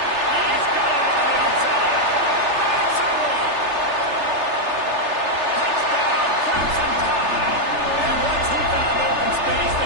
got it on the outside. That's a one. Touchdown, Crimson Tide. And once he found open space,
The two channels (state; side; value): late; left; 3.3 ms